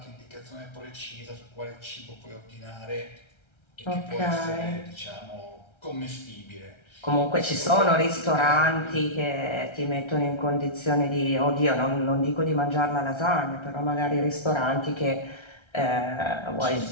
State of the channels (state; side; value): late; right; 1.3 ms